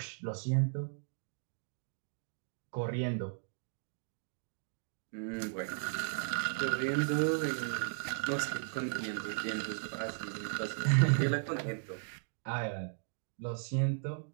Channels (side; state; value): left; silent; digital silence